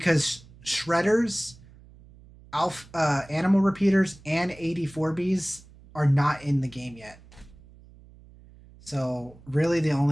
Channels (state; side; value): noise; right; hum, 23 dB below the sound